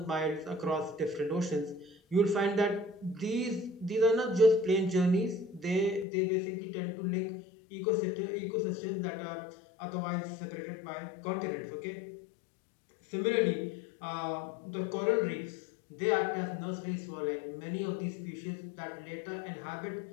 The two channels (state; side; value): drops out; right; at 6.1 s